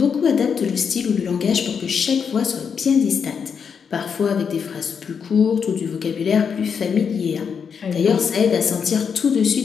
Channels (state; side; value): quieter; right; 6.6 dB